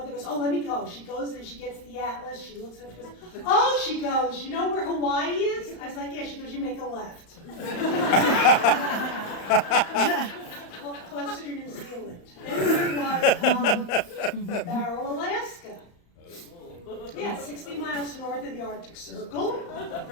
goes, oh, let me go. She goes and she gets the atlas. She looks at it. She goes, oh, she goes, you know where Hawaii is? I was like, yeah. She goes, you make a left. Closer to New Zealand. Then we was Barrow, Alaska. Yeah, 60 miles north of the Arctic Circle.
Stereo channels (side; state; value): right; late; 35 ms